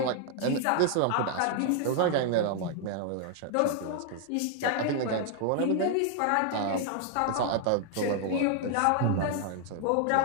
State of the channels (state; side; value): different; both; correlation 0.00